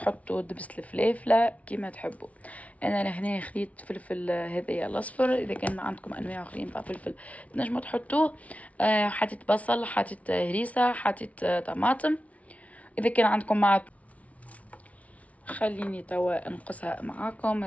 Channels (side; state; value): right; late; 0.067 ms